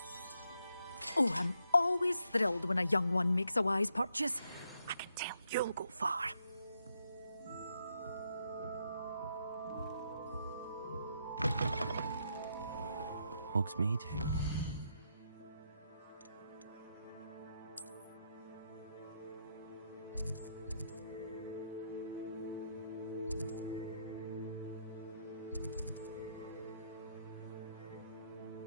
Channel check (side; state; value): both; inverted; correlation -0.78